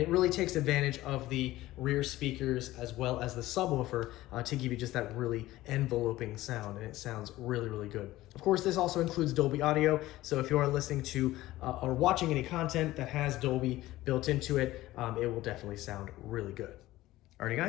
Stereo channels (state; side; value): quieter; right; 16.6 dB